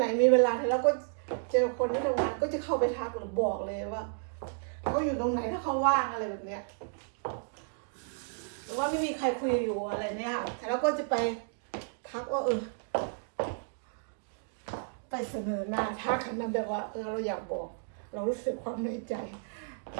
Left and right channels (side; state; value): left; silent; digital silence